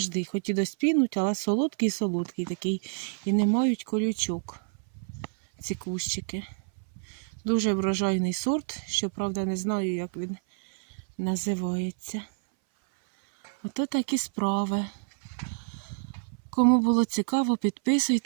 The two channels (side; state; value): left; silent; 59 dB below the other